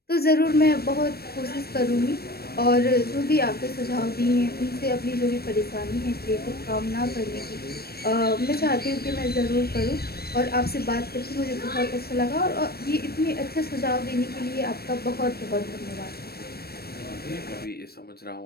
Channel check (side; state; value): right; late; 0.46 ms